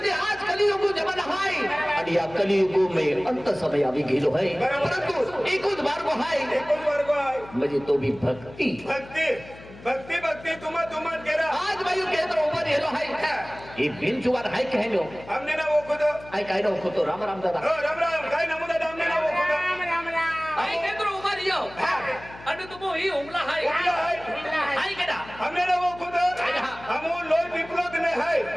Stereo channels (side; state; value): left; noise; hum, 18 dB below the sound